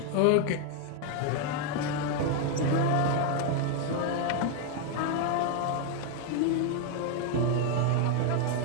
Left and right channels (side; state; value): both; different; correlation 0.00